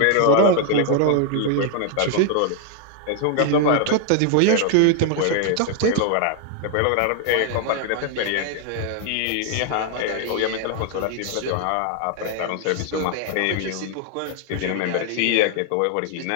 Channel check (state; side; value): different; both; correlation 0.00